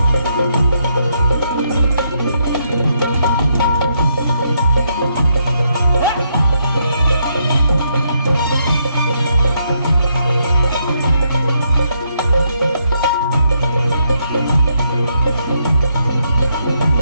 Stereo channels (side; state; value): both; inverted; correlation -0.77